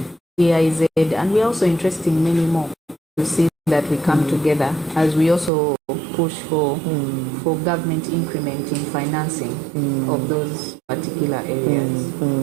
GIZ, and we're also interested in many more to see that we come together as we also push for government increment in financing of those particular areas.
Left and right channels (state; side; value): drops out; left; at 5.5 s